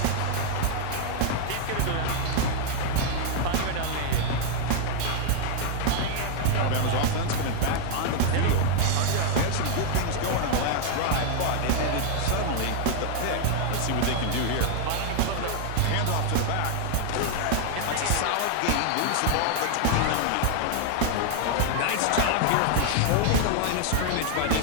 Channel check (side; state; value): both; different; correlation 0.00